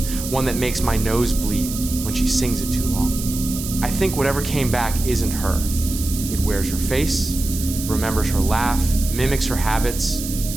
one that makes my nose bleed when she sings it too long. I think whatever came back isn't her. It wears her face, remembers her laugh, mimics her habits,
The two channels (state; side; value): noise; right; hiss, 8 dB below the sound